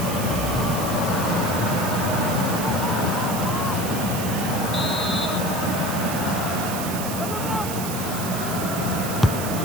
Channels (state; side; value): noise; right; hiss, 7 dB below the sound